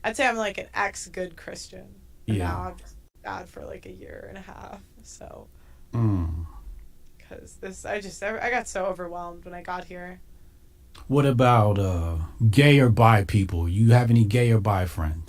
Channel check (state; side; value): identical; both; correlation 1.00